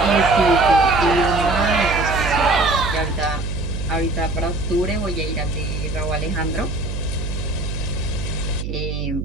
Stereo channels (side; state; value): right; noise; hum, 5 dB below the sound